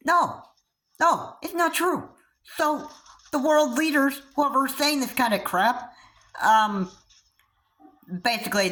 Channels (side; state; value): both; identical; correlation 1.00